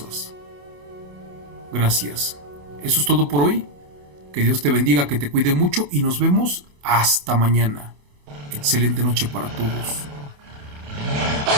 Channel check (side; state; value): left; late; 28 ms